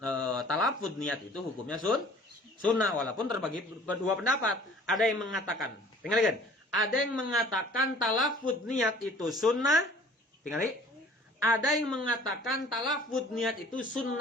talafud niat itu hukumnya sunnah walaupun terbagi dua pendapat. Ada yang mengatakan, tinggalkan. Ada yang mengatakan talafud niat itu sunnah, tinggali. Ada yang mengatakan talafud niat itu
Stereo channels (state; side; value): normal; both; correlation 0.50